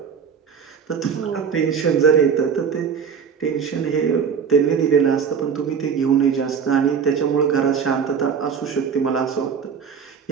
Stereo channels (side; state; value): left; quieter; 6.7 dB